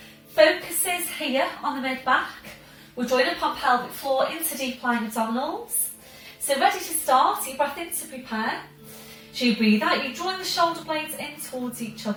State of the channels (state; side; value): identical; both; correlation 1.00